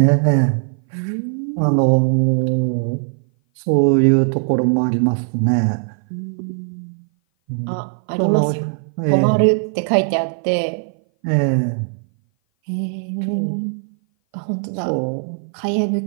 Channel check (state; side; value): silent; left; 58 dB below the other